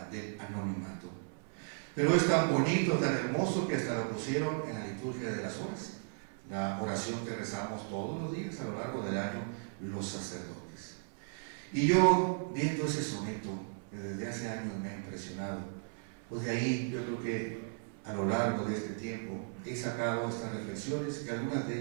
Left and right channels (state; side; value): silent; left; 54 dB below the other